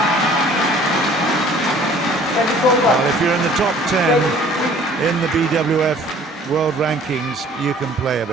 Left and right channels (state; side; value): normal; both; correlation 0.53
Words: Well, if you're in the top 10 in the BWF World Rankings, you can play a